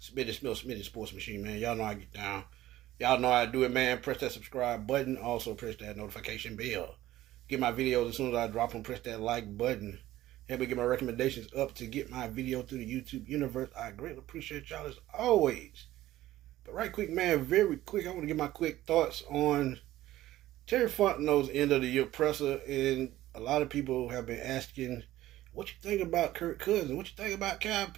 Smitty Sports Machine, man. Y'all know I get down. Y'all know I do it, man. Press that subscribe button. Also, press that notification bell. Get my videos as soon as I drop them. Press that like button. Help me get my recommendations up to get my video through the YouTube universe. I greatly appreciate y'all as always. But right quick, man, very quick, I want to get my quick thoughts on Terry Fontenot's end of the year presser. And a lot of people have been asking, what you think about Kirk Cousins? What you think about Kyle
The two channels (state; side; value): quieter; left; 15.0 dB